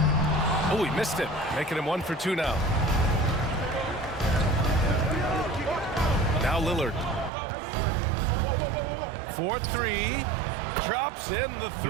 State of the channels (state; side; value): drops out; left; at 7.3 s